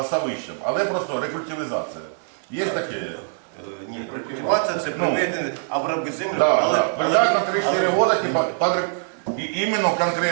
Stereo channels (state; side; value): silent; left; digital silence